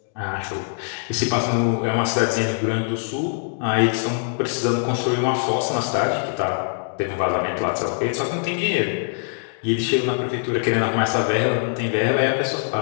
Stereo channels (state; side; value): silent; right; digital silence